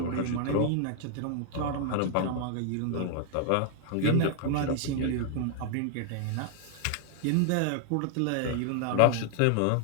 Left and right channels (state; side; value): different; both; correlation 0.00